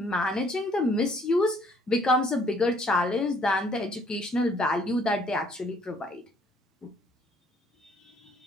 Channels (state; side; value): normal; both; correlation 0.63